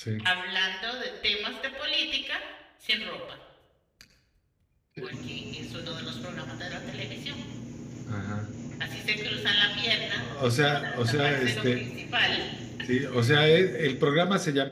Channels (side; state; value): both; identical; correlation 1.00